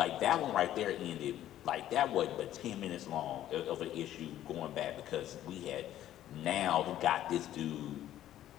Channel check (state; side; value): quieter; right; 12.5 dB